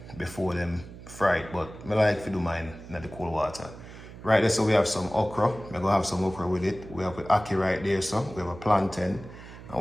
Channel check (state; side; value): noise; right; hum, 16 dB below the sound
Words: before them fry it, but I like to do mine in the cold water. Right there, so we have some okra. We're going to have some okra with it. We have the ackee right there, so we have a plantain. And